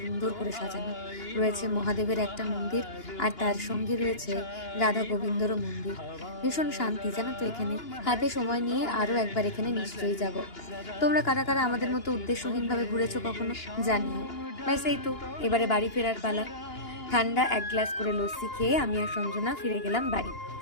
করে সাজানো রয়েছে মহাদেবের একটা মন্দির, আর তার সঙ্গে রয়েছে রাধা গোবিন্দরও মন্দির। ভীষণ শান্তি জানো তো এখানে। হাতে সময় নিয়ে আরও একবার এখানে নিশ্চয়ই যাব। তোমরা কারা কারা আমাদের মতো উদ্দেশ্যহীনভাবে ঘুরেছো কখনো জানিও। ব্যাস এই তো, এবারে বাড়ি ফেরার পালা। ঠান্ডা এক গ্লাস করে লস্যি খেয়ে আমি আর সঞ্জনা ফিরে গেলাম বাড়ি।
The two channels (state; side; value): late; right; 2.9 ms